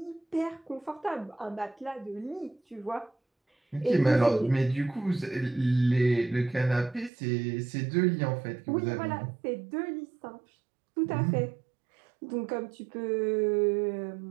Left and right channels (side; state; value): left; drops out; at 7.1 s